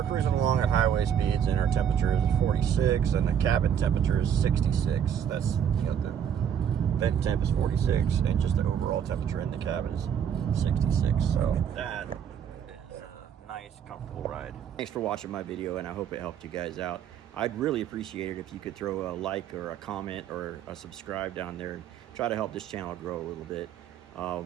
cruising along at highway speeds, and our temperature is 46, and the cabin temperature is 66. That's, you know, the vent temp is 46, and just the overall temperature in the cabin is 66. So that is a nice, comfortable ride. Thanks for watching my video, and I hope it helped you guys out. I'd really appreciate it if you could throw a like or a comment or a subscribe down there and try to help this channel grow a little bit.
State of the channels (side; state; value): left; quieter; 8.6 dB